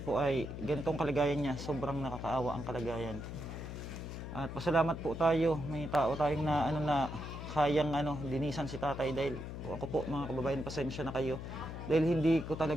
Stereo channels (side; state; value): left; noise; hum, 8 dB below the sound